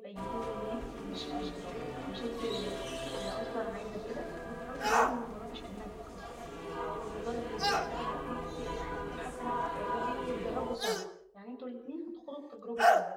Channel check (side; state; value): both; identical; correlation 1.00